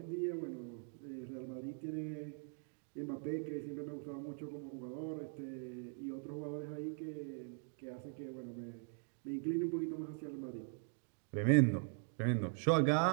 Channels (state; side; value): silent; left; 50 dB below the other